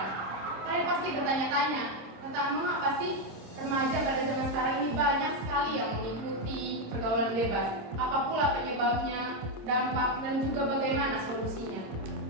Kalian pasti bertanya-tanya tentang mengapa sih remaja pada zaman sekarang ini banyak sekali yang mengikuti pergaulan bebas. Apa pula penyebabnya, dampak, dan juga bagaimana solusinya.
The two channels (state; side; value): late; left; 26 ms